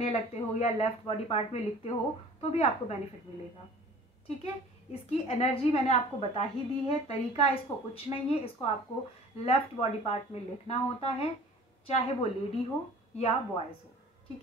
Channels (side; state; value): both; normal; correlation 0.46